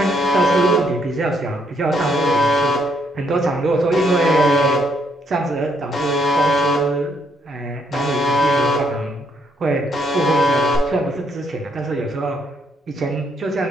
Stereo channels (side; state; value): both; normal; correlation 0.72